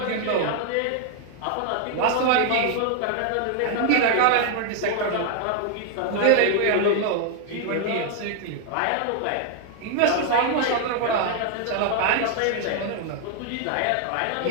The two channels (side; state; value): both; different; correlation 0.00